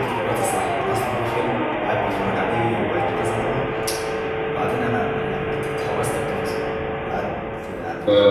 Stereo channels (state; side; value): identical; both; correlation 1.00